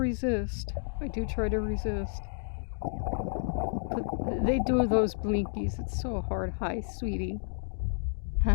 I do try to resist. But they do those blinkies. It's so hard. Hi, sweetie.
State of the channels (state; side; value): silent; right; digital silence